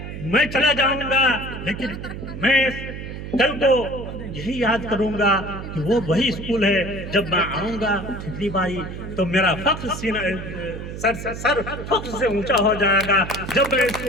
मैं चला जाऊंगा, लेकिन मैं कल को यही याद करूंगा कि वो वही स्कूल है। जब मैं आऊंगा ठिकरी बारी तो मेरा फख्र सीना सर फख्र से ऊंचा हो जाएगा जब मैं इस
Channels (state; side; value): noise; right; hum, 9 dB below the sound